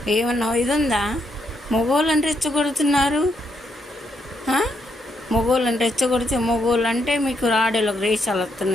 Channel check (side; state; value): both; normal; correlation 0.77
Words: ఏమన్నా ఇది ఉందా? మగవాళ్ళని రెచ్చగొడుతున్నారు. మగవాళ్ళని రెచ్చగొడితే మగవాళ్ళు అంటే మీకు ఆడోళ్ళకి రేషాలు